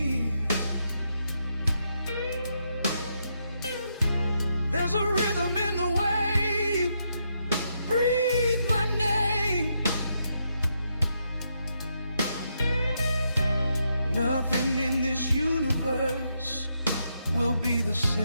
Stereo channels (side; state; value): both; inverted; correlation -0.80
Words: There's a rhythm in the way you breathe my name. Nothing in this universe will be the